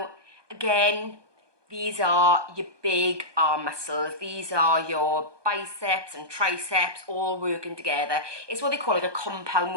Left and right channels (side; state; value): left; late; 1.2 ms